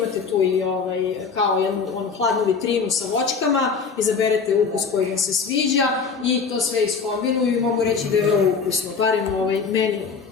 tu i kao jednu hladnu vitrinu sa voćkama, izaberete ukus koji vam se sviđa i to sve iskombinuju i mogu reći da je vrlo ukusno, barem meni,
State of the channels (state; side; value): quieter; right; 5.4 dB